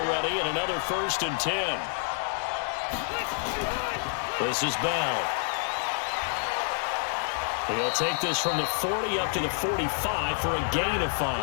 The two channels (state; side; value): silent; right; 59 dB below the other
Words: and another 1st and 10. This is Bell. He'll take this from the 40 up to the 45 for a gain of